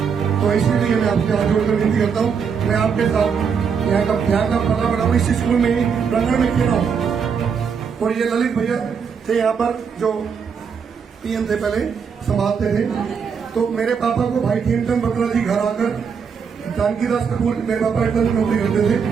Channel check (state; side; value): quieter; left; 6.4 dB